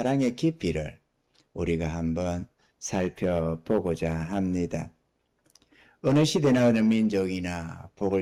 깊이를 우리가 한번 살펴보고자 합니다. 어느 시대나 어느 민족이나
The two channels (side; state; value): both; identical; correlation 1.00